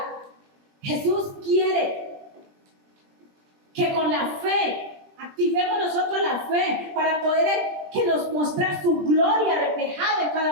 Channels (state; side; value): late; left; 20 ms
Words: Jesús quiere que con la fe activemos nosotros la fe para poder que nos mostrar su gloria reflejada en